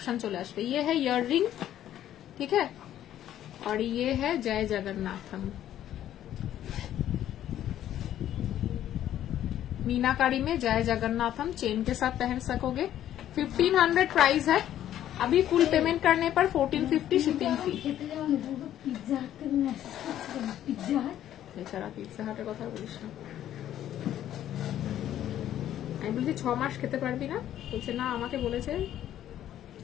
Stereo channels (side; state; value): right; quieter; 11.7 dB